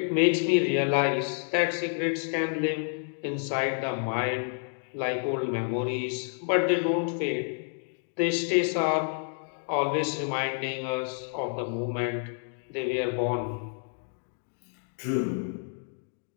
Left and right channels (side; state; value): right; silent; 58 dB below the other